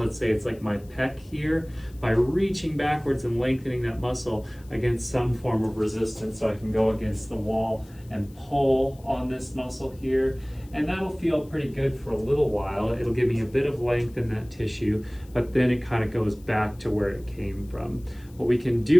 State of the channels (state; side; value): noise; left; hiss, 28 dB below the sound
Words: say it's like my pec here, by reaching backwards and lengthening that muscle against some form of resistance. So I can go against the wall and pull on this muscle here, and that'll feel pretty good for a little while. It'll give me a bit of length in that tissue, but then it kind of goes back to where it came from. What we can